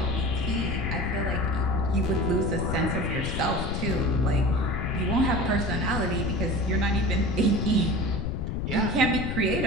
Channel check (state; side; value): noise; left; rumble, 2 dB below the sound